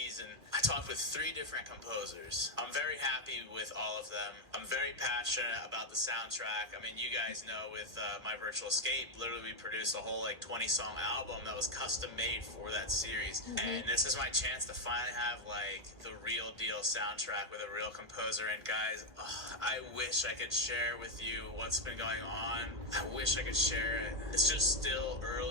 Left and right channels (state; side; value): late; left; 2.2 ms